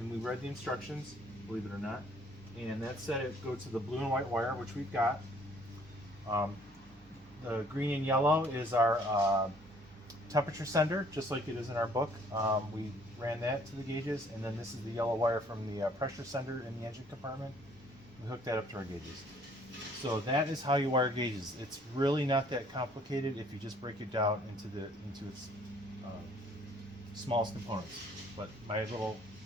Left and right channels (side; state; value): both; normal; correlation 0.60